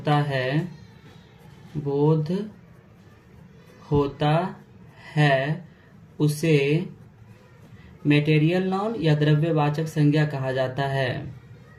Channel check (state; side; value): identical; both; correlation 1.00